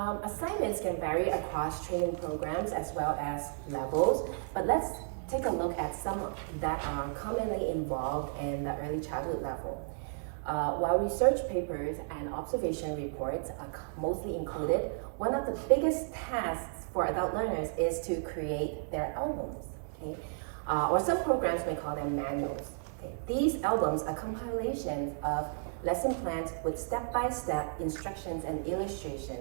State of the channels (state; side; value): silent; left; digital silence